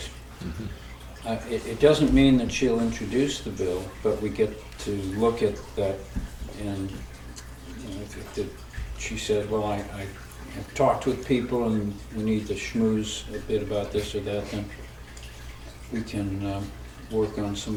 It doesn't mean that she'll introduce the bill, but we get to look at that, and she said, well, I have talked with people and we need to schmooze a bit about this or that, then we can work on some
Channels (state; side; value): identical; both; correlation 1.00